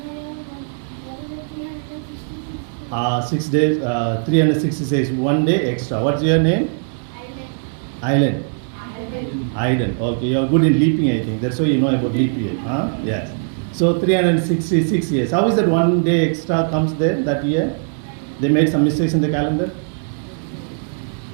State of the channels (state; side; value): silent; left; digital silence